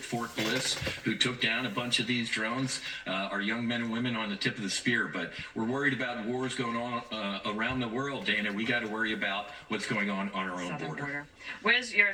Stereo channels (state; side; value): identical; both; correlation 1.00